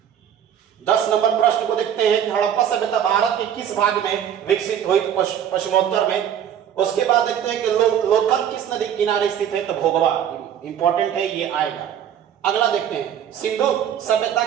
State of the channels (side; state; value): left; quieter; 9.5 dB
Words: दस नंबर प्रश्न को देखते हैं कि हड़प्पा सभ्यता भारत के किस भाग में विकसित हुई, तो पश्चिमोत्तर में। उसके बाद देखते हैं कि लोथल किस नदी किनारे स्थित है, तो भोगवा, इंपॉर्टेंट है ये आएगा। अगला देखते हैं, सिंधु